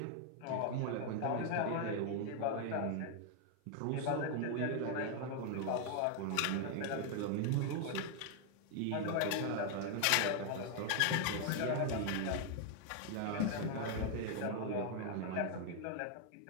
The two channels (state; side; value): different; both; correlation 0.00